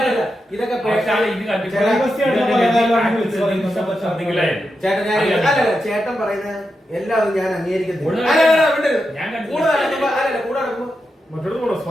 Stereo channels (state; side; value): normal; both; correlation 0.87